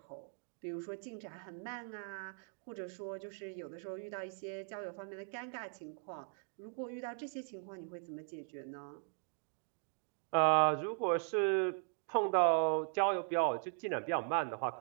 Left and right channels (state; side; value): silent; left; 52 dB below the other